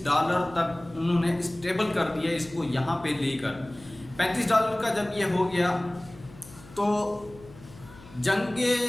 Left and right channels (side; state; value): left; noise; hum, 21 dB below the sound